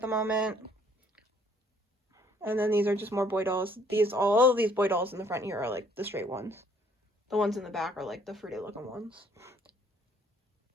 the moment. And then these are just more boy dolls. All of these boy dolls in the front here are like the straight ones. The ones in the back are like the fruity looking ones.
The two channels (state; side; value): normal; both; correlation 0.62